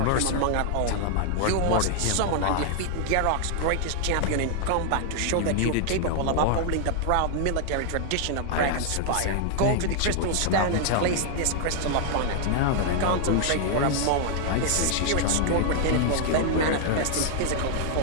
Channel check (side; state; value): both; different; correlation 0.00